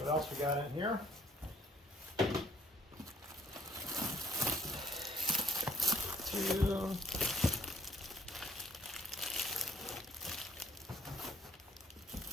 else we got in here? 2,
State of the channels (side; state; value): both; normal; correlation 0.61